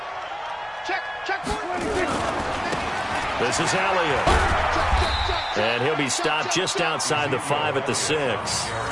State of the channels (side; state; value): both; identical; correlation 1.00